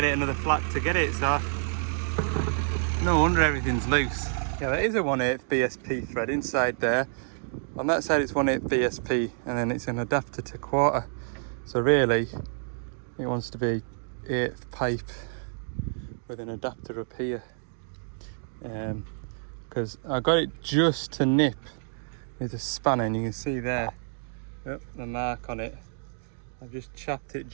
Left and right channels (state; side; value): silent; left; digital silence